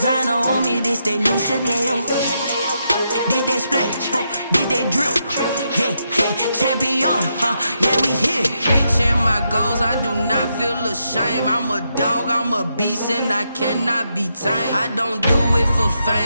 on me, this that new Chanel. Did that splash, did that drip. Yeah, champion, yeah, we here. Reaching my goals, I do not feel ashamed. I'm a dog, I'm a beast, and I cannot be tamed. I don't do it for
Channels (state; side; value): inverted; both; correlation -0.82